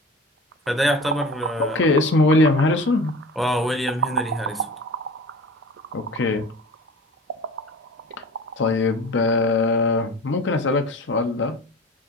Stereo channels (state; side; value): normal; both; correlation 0.38